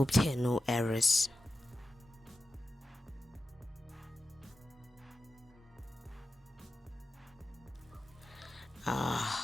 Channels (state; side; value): normal; both; correlation 0.92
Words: there are no errors.